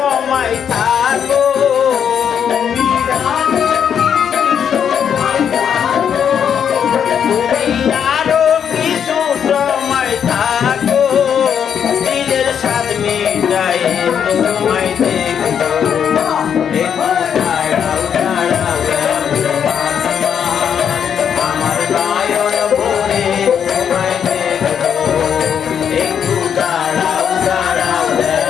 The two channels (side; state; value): right; quieter; 8.1 dB